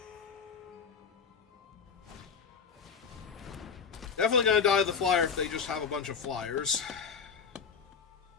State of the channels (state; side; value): quieter; right; 6.2 dB